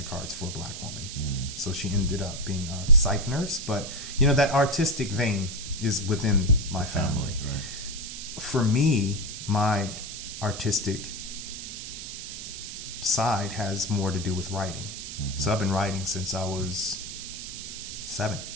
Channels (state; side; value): noise; right; hiss, 8 dB below the sound